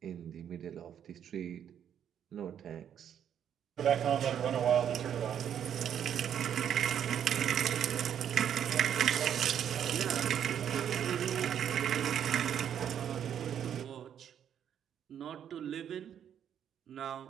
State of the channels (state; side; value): quieter; left; 9.2 dB